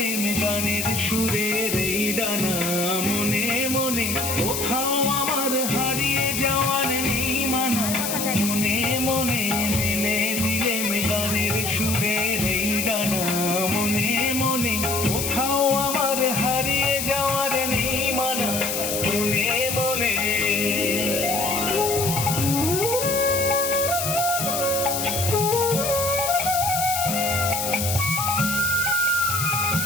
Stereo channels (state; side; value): noise; left; hiss, 2 dB below the sound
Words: গানের সুরের এই ডানা, মনে মনে কোথাও আমার হারিয়ে যাওয়ার নেই মানা। মনে মনে মেলে দিলেম গানের সুরের এই ডানা, মনে মনে কোথাও আমার হারিয়ে যাওয়ার নেই মানা। মনে মনে